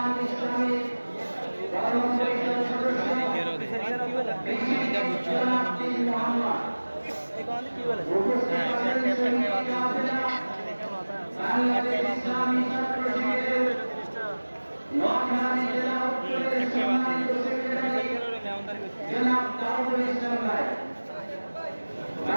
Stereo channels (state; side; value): inverted; both; correlation -1.00